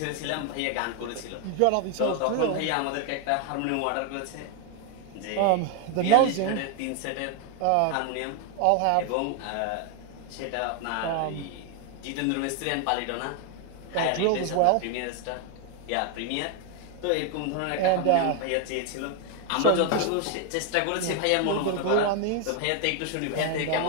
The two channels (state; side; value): different; both; correlation 0.01